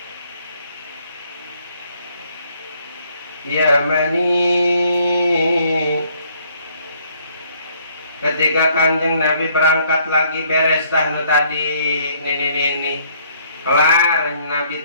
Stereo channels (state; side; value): inverted; both; correlation -0.65